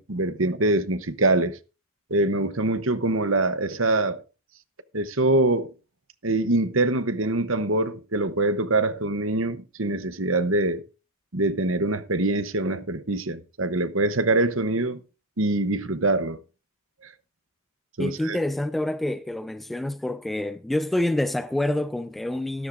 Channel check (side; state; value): both; normal; correlation 0.08